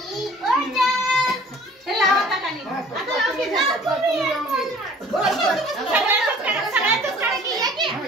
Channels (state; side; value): normal; both; correlation 0.51